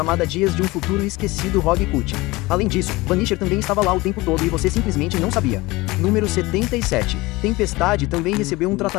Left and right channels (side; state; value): right; quieter; 21.5 dB